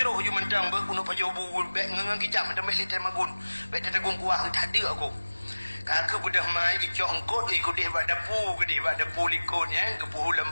je mentang berkuno pajo bubul bek ngangang kicap mendam bek litai magun bek tetegung kuah tak ada aku kakak budah mai dicok kot ikut dia bak dapu ke dia bak dapu likut ya kepuh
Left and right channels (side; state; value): both; inverted; correlation -1.00